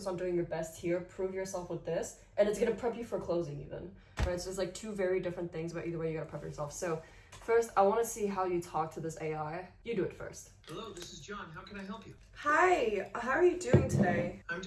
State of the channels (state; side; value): identical; both; correlation 1.00